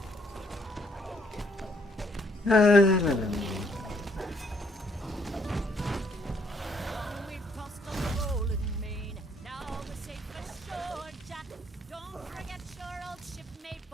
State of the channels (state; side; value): normal; both; correlation 0.68